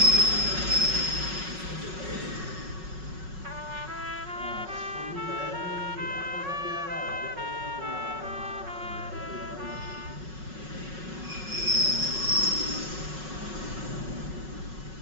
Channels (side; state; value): left; late; 5.4 ms